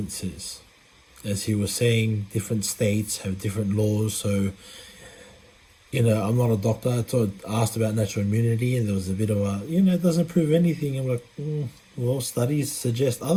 says. As he was saying, different states have different laws, so I'm not a doctor. I asked about natural immunity, and there was a bit of a, it doesn't prove anything. I'm like, well, studies suggest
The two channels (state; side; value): identical; both; correlation 1.00